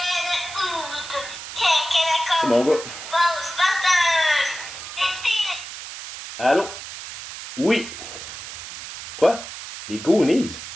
C'est mon gars. Allô? Oui. Quoi? Les Goonies?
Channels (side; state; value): right; noise; hiss, 11 dB below the sound